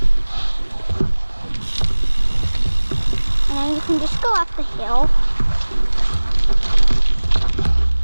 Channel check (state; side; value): inverted; both; correlation -1.00